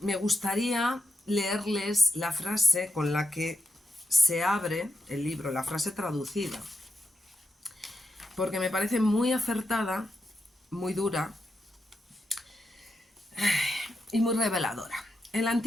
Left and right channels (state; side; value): normal; both; correlation 0.84